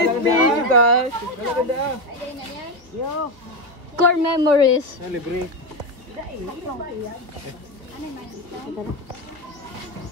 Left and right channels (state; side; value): late; left; 2.7 ms